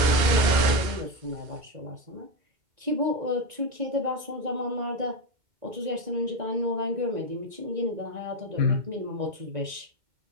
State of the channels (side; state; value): left; late; 2.2 ms